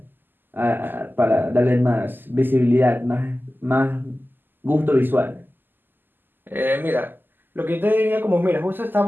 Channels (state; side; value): late; left; 0.092 ms